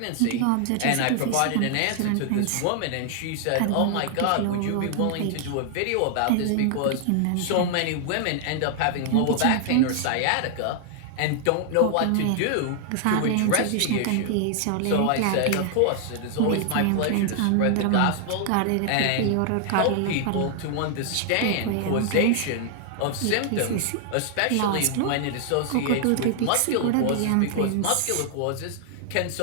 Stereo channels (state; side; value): different; both; correlation 0.00